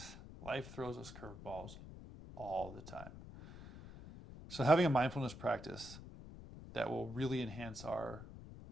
Life throws us curveballs all the time. So having a mindfulness practice that will really enhance our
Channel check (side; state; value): left; noise; rumble, 13 dB below the sound